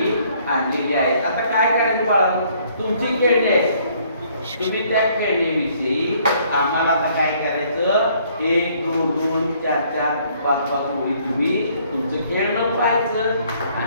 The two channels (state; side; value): inverted; both; correlation -0.63